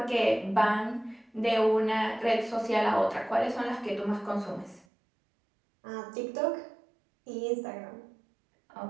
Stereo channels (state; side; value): drops out; left; at 4.9 s